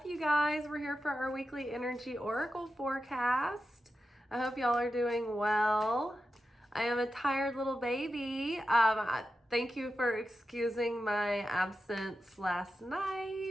you guys? We're here for our weekly energy oracle forecast. I hope y'all are doing well. I am a tired little baby. Thank you for excusing my absence last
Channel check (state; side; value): normal; both; correlation 0.90